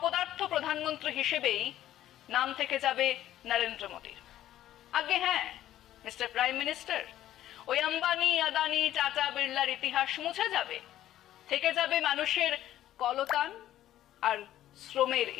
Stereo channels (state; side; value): quieter; right; 12.9 dB